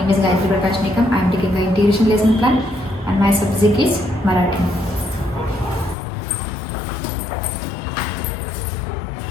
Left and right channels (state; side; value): drops out; right; at 6.0 s